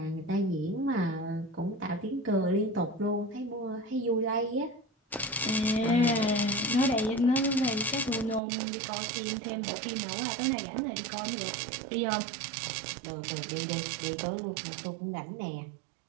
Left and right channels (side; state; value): left; drops out; at 8.4 s